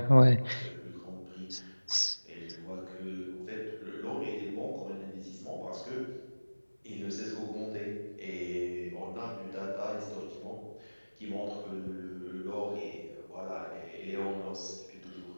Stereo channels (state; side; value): inverted; both; correlation -1.00